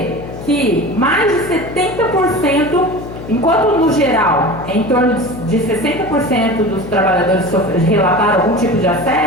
Que mais de 70%, enquanto no geral, em torno de 60% dos trabalhadores relataram algum tipo de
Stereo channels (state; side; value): noise; left; hum, 12 dB below the sound